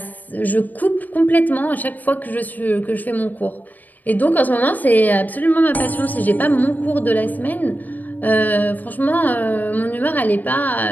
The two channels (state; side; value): late; right; 0.084 ms